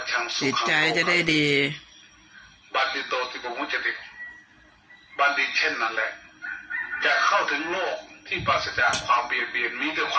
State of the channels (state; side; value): identical; both; correlation 1.00